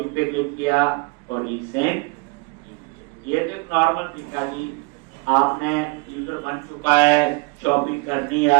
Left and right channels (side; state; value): left; quieter; 28.0 dB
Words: पे क्लिक किया और रीसेंट। ये तो एक नॉर्मल तरीका जी, आपने यूजर बन चुका है, शॉपिंग करनी